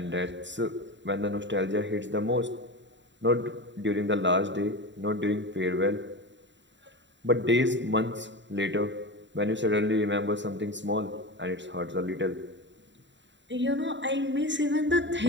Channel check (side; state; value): left; late; 0.53 ms